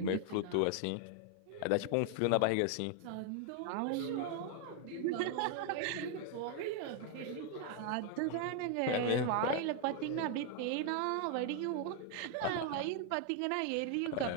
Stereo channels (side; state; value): both; different; correlation 0.00